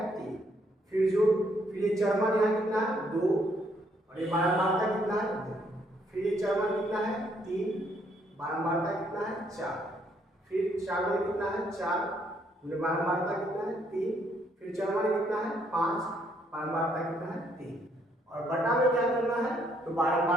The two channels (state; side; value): normal; both; correlation 0.70